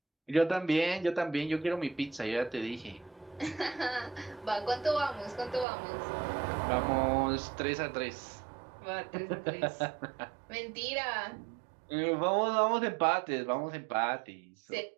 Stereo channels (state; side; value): drops out; left; at 5.7 s